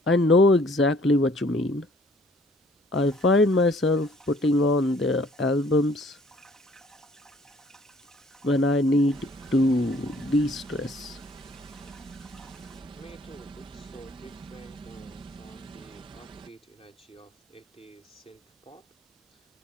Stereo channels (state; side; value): normal; both; correlation 0.58